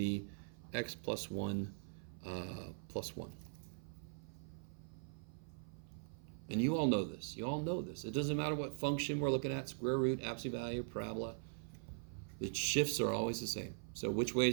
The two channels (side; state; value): left; silent; 50 dB below the other